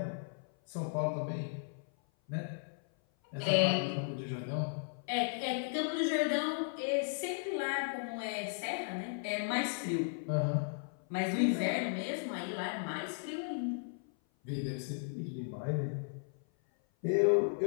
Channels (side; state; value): right; silent; 54 dB below the other